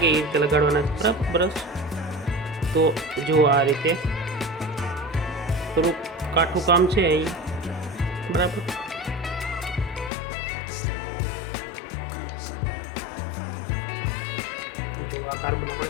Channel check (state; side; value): drops out; right; at 10.1 s